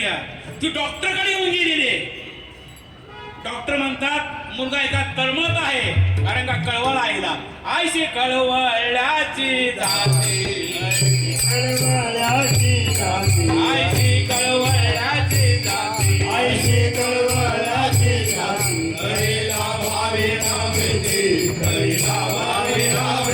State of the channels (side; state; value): both; identical; correlation 1.00